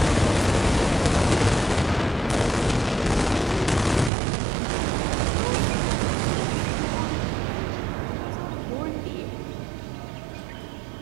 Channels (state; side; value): drops out; left; at 4.1 s